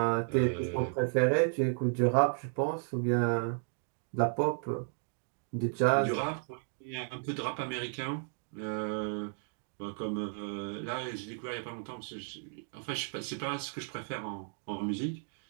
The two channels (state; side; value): silent; left; 55 dB below the other